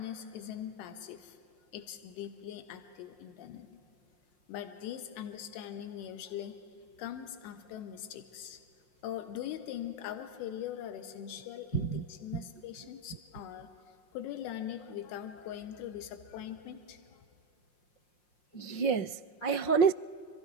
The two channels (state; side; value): late; right; 5.6 ms